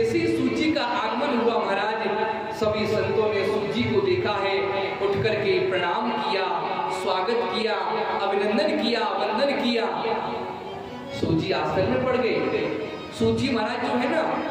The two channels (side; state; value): both; identical; correlation 1.00